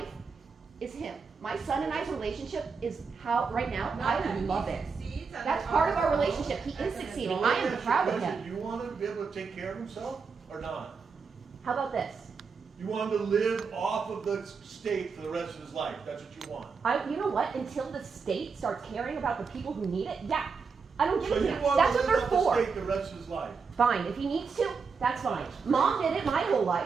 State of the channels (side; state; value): left; quieter; 5.2 dB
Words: is him. My son and I's relationship is how, right now, I love it. That's part of our relationship. He is succeeding. I am proud of him. You want him to be able to take care of himself or not? How about this? You want him to live off of the state for the rest of his life. That's what you want. You know what? Until the state starts caring about the people who need it, yeah. I don't give So a you damn. want That's to what live they're off for. the state the rest of his life. Fine. If he needs to, that's fine. Mom did it my whole